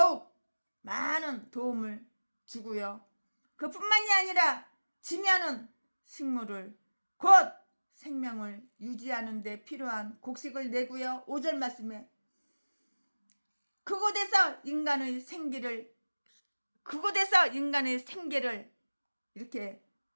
많은 도움을 주고요. 그뿐만이 아니라 지면은 식물을 곧 생명을 유지하는 데 필요한 곡식을 내고요. 5절 말씀에 그곳에서 인간의 생기를 이렇게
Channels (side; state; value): both; inverted; correlation -1.00